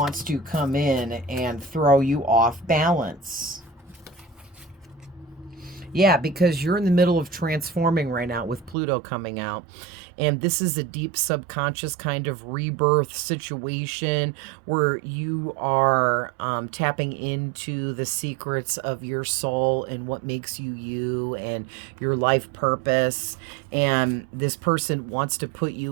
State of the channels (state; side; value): drops out; left; at 8.8 s